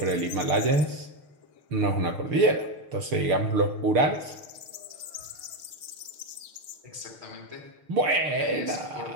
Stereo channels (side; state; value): left; late; 6.5 ms